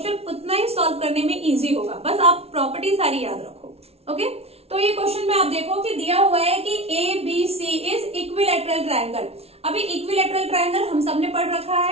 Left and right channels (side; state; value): left; late; 0.30 ms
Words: उतना ही सॉल्व करने में इजी होगा। बस आप प्रॉपर्टी सारी याद रखो। ओके, तो ये क्वेश्चन में आप देखो कि दिया हुआ है कि ABC इज इक्विलैटरल ट्रायंगल। अभी इक्विलैटरल ट्रायंगल हम सबने पढ़ रखा